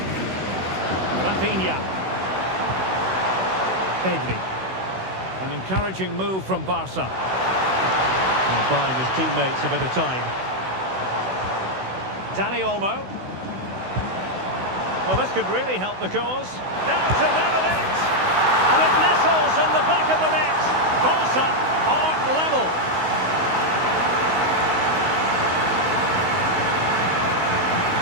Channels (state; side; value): late; left; 16 ms